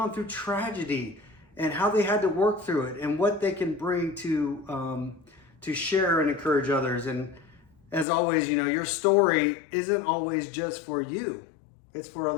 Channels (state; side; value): drops out; right; at 8.1 s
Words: through tragedy and how they had to work through it and what they can bring to share and encourage others. And as always, you know, your story isn't always just for you; it's for